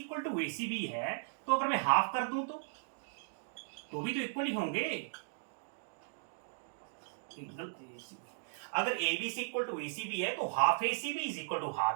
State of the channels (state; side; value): silent; left; digital silence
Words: टू ACB है तो अगर मैं हाफ कर दूं तो भी तो इक्वल ही होंगे। एंगल ACB, अगर ABC इक्वल टू ACB है तो half ACB is equal to